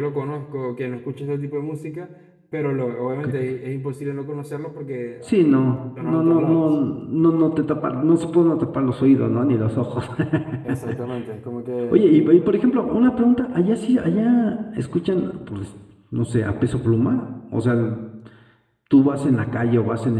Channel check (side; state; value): both; identical; correlation 1.00